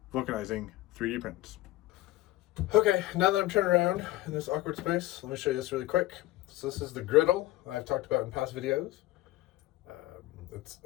vulcanizing 3D prints. Okay, now that I'm turned around in this awkward space, let me show you this really quick. So this is the griddle I've talked about in past videos. It's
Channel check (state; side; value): quieter; right; 16.7 dB